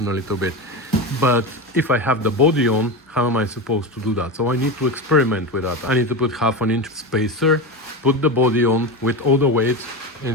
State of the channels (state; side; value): normal; both; correlation 0.21